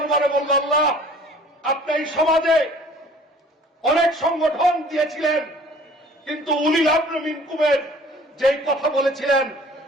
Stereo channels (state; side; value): normal; both; correlation 0.51